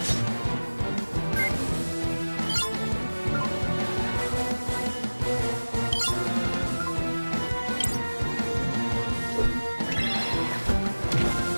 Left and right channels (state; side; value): inverted; both; correlation -1.00